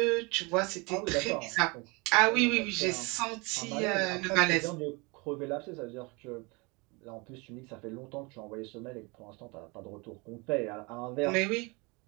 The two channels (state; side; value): quieter; left; 28.0 dB